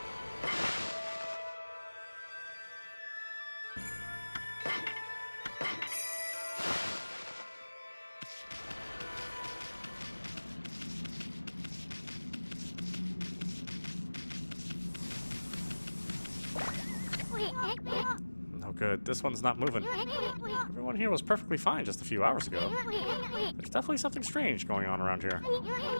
No good. This one's not moving. Everyone here was perfectly fine just a few hours ago. There's definitely something strange going on around here.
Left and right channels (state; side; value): inverted; both; correlation -1.00